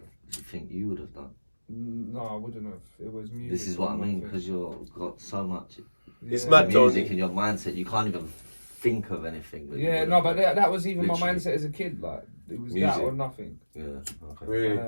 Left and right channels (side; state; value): both; inverted; correlation -1.00